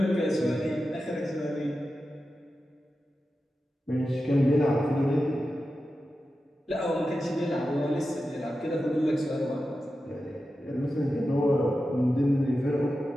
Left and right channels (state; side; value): normal; both; correlation 0.92